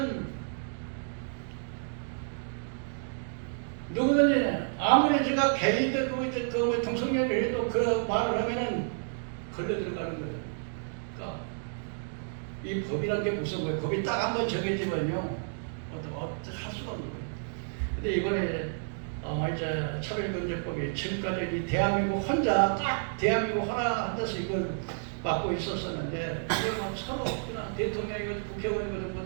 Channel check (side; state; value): left; silent; digital silence